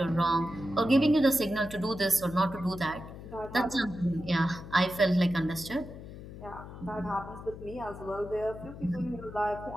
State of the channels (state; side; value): noise; left; hum, 13 dB below the sound